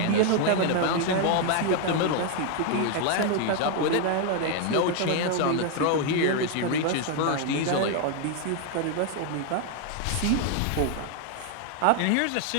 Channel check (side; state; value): both; different; correlation 0.00